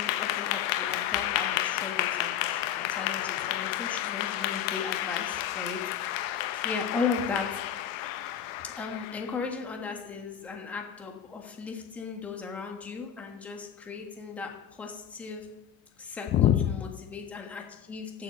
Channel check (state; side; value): quieter; right; 9.3 dB